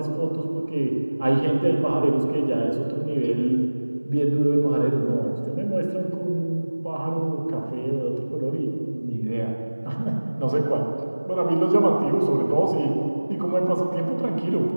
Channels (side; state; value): both; inverted; correlation -1.00